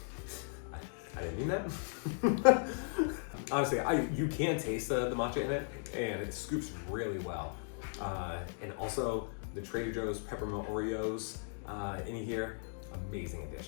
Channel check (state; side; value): silent; right; 53 dB below the other